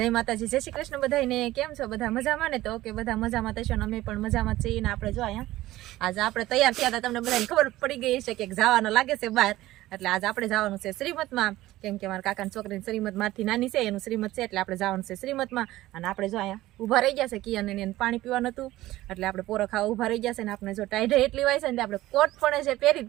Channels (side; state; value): left; quieter; 16.3 dB